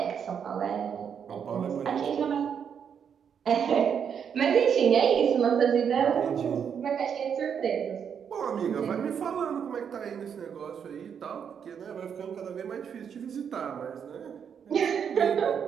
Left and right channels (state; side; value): quieter; left; 7.6 dB